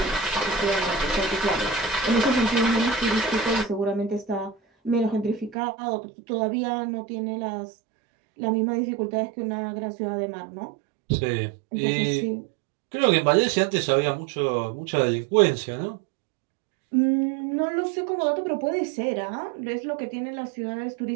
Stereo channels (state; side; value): drops out; left; at 5.6 s